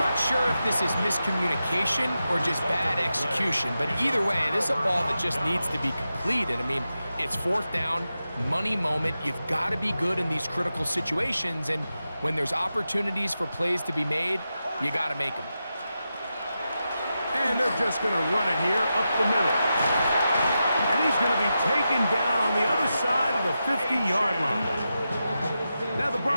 not sure if this is miscommunication or just bad execution, but either way, this is a ball that just needs to be completed. I mean, it's 4th down, money moment. You've got to be good in these critical situations, and when there's opportunities for plays to be made, you got to make them. And they're just going to run it here up the middle. And he's going to be taken down on the other side of the 50-yard line. Now the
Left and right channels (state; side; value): inverted; both; correlation -0.90